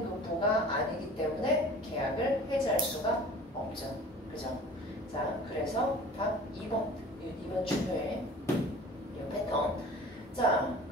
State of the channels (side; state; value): both; normal; correlation 0.44